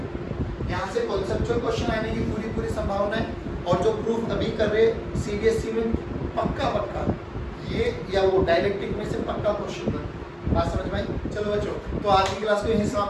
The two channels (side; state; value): both; identical; correlation 1.00